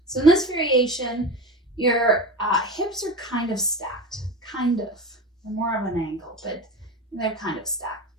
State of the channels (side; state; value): both; normal; correlation 0.28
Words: So in this variation, your hips are kind of stacked. Kind of. They're more of an angle, but they're kind of stacked.